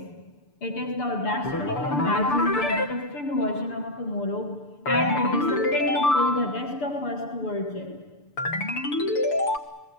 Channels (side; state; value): right; late; 6.8 ms